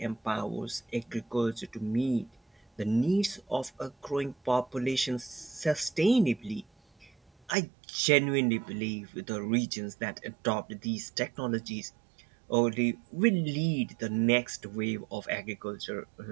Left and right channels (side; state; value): left; drops out; at 7.5 s